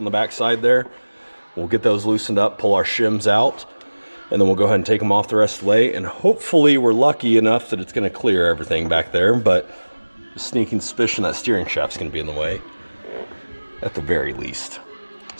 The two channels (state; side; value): inverted; both; correlation -1.00